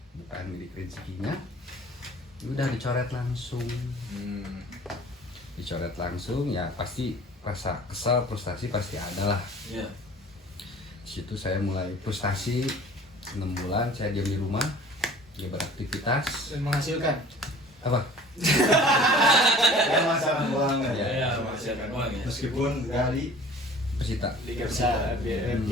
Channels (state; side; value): normal; both; correlation 0.46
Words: bukan milik rezekinya. Udah dicoret langsung. Dicoret langsung ya pasti rasa kesal, frustasi pasti ada lah. Iya. Di situ saya mulai frustasi, 6 bulan saya diam di rumah, dia beraktivitas. dan menghasilkan Apa? Ya masalah banget ya. Iya, masih akan uang ya. Meskipun dari Persita. liga besar,